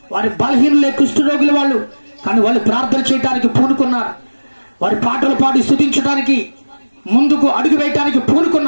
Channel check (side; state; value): both; inverted; correlation -1.00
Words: వారి బలహీనులే, కుష్ఠరోగులు వాళ్ళు. కానీ వాళ్ళు ప్రార్థన చేయడానికి పూనుకున్నారు. వారి పాటలు పాడి స్తుతించడానికి ముందుకు అడుగు వేయటానికి